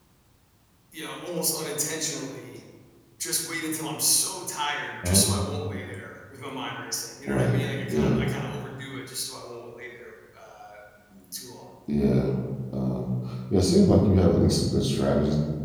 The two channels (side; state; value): both; identical; correlation 1.00